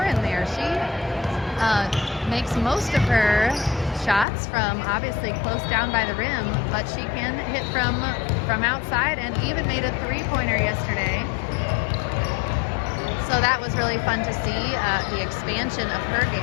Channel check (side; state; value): right; drops out; at 4.2 s